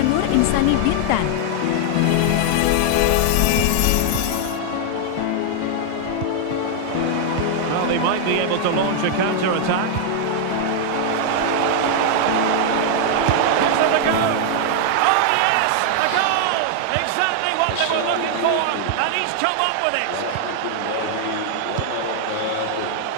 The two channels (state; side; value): different; both; correlation -0.01